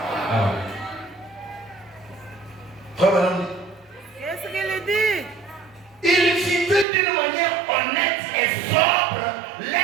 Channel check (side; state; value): left; drops out; at 6.9 s